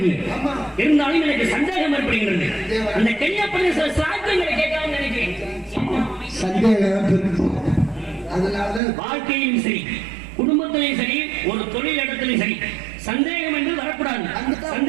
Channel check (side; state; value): left; drops out; at 8.8 s